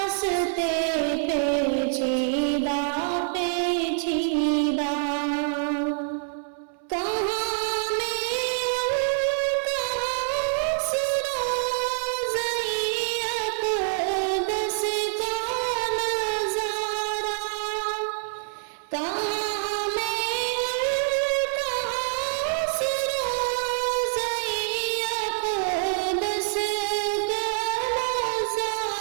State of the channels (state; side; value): silent; left; 60 dB below the other